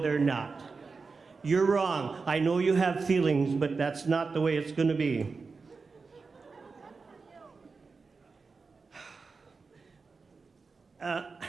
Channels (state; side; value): quieter; left; 4.5 dB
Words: not. You're wrong. I know you have feelings, but that's not the way it's going to be.